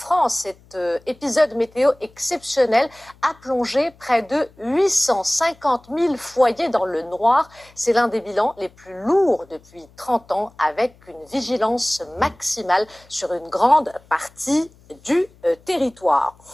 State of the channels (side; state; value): left; noise; hum, 28 dB below the sound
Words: cet épisode météo exceptionnel a plongé près de 850 000 foyers dans le noir. C'est l'un des bilans les plus lourds depuis 30 ans, avec une vigilance maximale sur une grande partie du territoire.